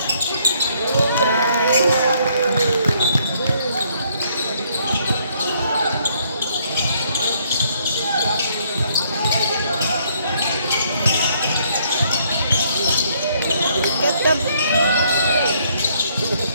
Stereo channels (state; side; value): inverted; both; correlation -0.68